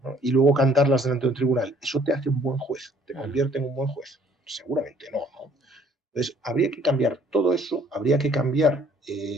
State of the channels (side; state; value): both; normal; correlation 0.60